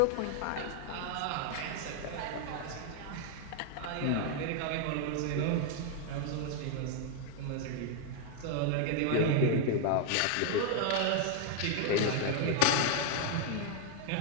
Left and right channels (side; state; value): both; different; correlation 0.00